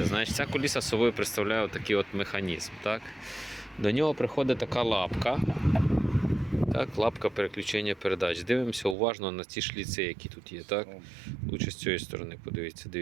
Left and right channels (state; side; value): drops out; left; at 9.0 s